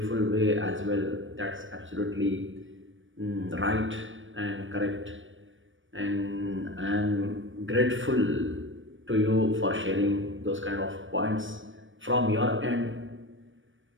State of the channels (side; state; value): left; late; 0.56 ms